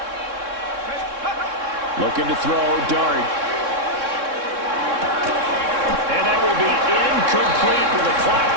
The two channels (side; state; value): left; late; 3.6 ms